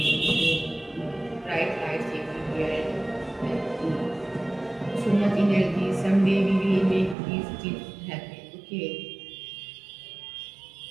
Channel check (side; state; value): left; drops out; at 7.2 s